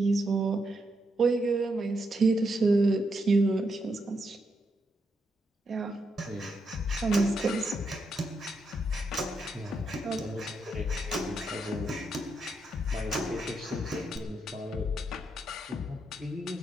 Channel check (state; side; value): normal; both; correlation 0.81